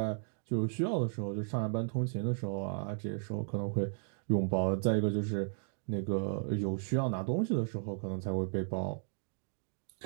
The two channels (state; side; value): silent; left; digital silence